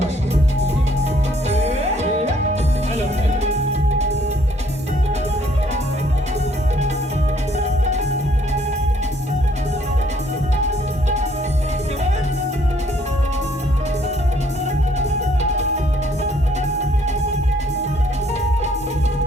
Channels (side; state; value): both; normal; correlation 0.64